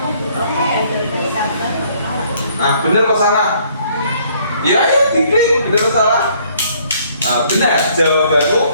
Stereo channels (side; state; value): both; inverted; correlation -0.63